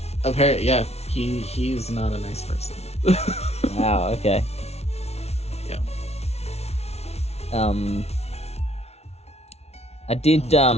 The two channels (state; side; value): late; right; 0.31 ms